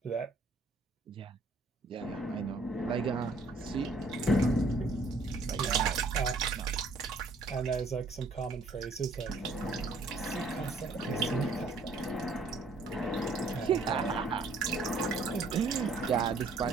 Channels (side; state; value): left; quieter; 3.3 dB